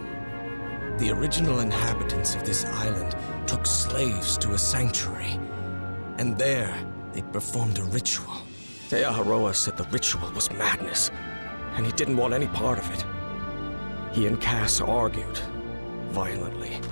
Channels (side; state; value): both; inverted; correlation -1.00